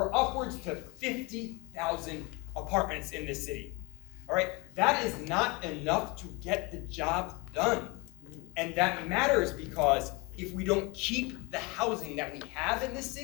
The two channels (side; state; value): right; quieter; 27.2 dB